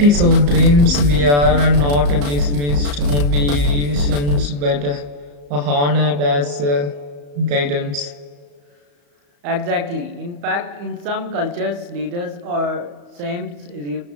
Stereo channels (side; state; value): left; late; 34 ms